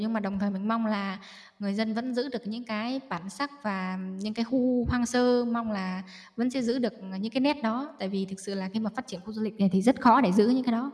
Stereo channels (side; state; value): both; identical; correlation 1.00